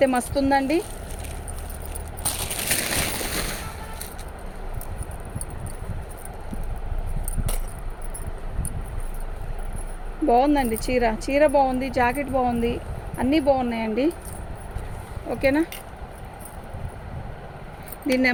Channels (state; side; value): identical; both; correlation 1.00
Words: మస్తు ఉందండి. బాగుందండి చీర బాగుంది, జాకెట్ బాగుంది, అన్నీ బాగున్నాయండి. ఓకేనా, దీని